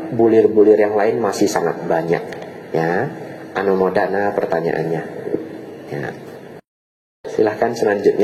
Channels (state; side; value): identical; both; correlation 1.00